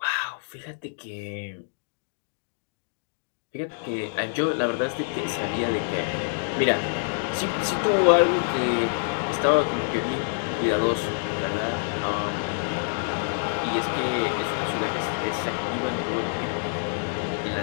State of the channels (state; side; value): silent; right; digital silence